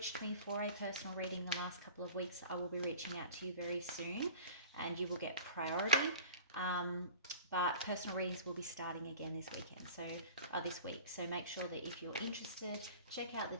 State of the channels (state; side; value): inverted; both; correlation -0.41